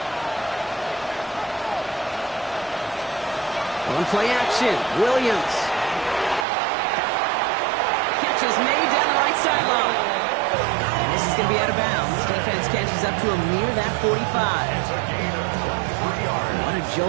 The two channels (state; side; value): drops out; left; at 6.5 s